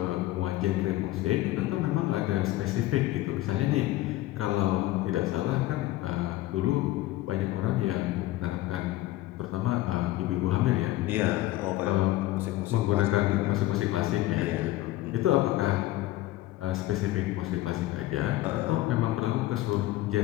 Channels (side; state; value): right; quieter; 16.5 dB